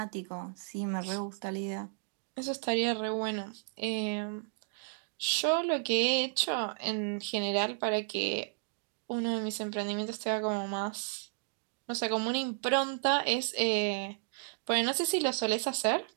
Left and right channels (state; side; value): silent; left; digital silence